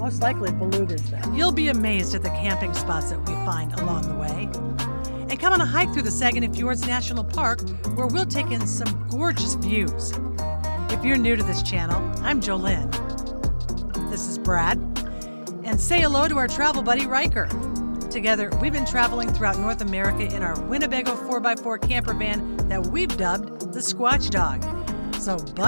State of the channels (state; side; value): inverted; both; correlation -1.00